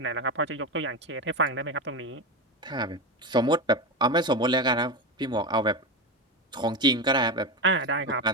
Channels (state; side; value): normal; both; correlation 0.17